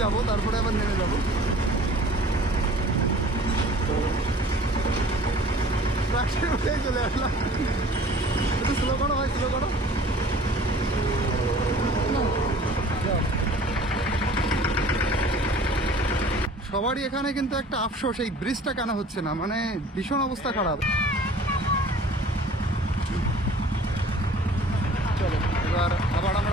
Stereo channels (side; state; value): both; normal; correlation 0.48